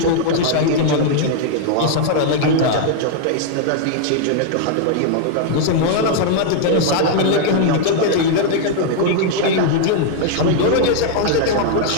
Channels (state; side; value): different; both; correlation -0.01